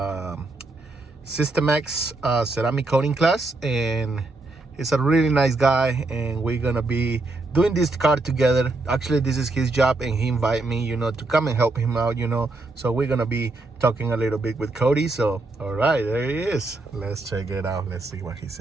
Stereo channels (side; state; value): left; quieter; 3.1 dB